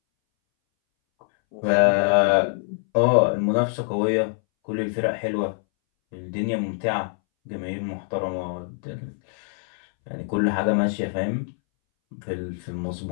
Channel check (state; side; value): silent; right; 61 dB below the other